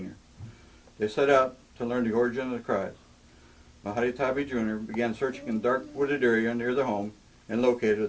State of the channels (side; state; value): both; identical; correlation 1.00